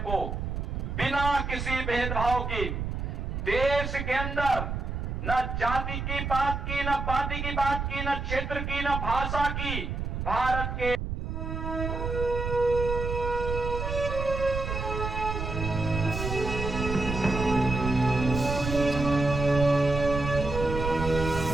बिना किसी भेदभाव के देश के अंदर न जाति की बात की, न पार्टी की बात की, न क्षेत्र की, न भाषा की, भारत के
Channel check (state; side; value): noise; right; rumble, 4 dB below the sound